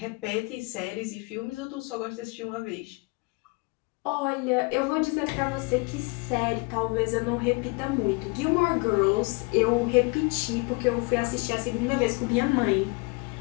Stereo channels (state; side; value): quieter; right; 29.3 dB